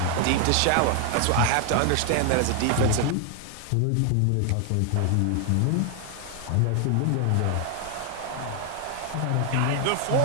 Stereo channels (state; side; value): different; both; correlation 0.00